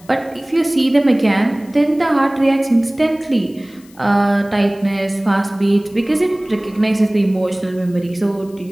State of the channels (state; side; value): noise; left; hiss, 27 dB below the sound